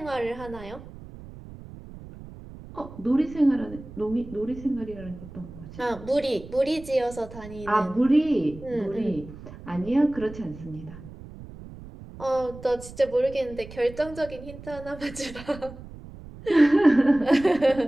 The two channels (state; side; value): noise; right; rumble, 16 dB below the sound